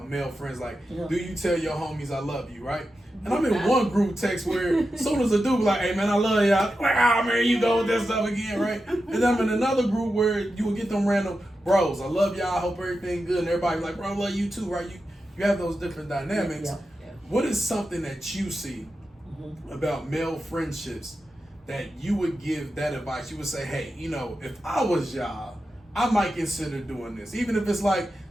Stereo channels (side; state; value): both; normal; correlation 0.90